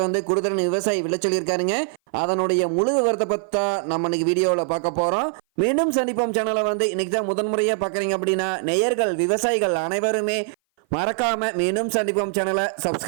வந்து குடுதரன் விவசாயி விலை சொல்லியிருக்காருங்க. அதனுடைய முழு விவரத்தை பற்றி நம்ம இன்னைக்கு வீடியோவில் பார்க்க போகிறோம். மீண்டும் சந்திப்போம் சேனலை வந்து இன்னைக்கு தான் முதன்முறையாக பார்க்குறீங்க அப்படின்னா நேயர்கள் விவசாயிகள் அனைவருமே மறக்காம மீண்டும் சந்திப்போம் சேனலை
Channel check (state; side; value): silent; left; 58 dB below the other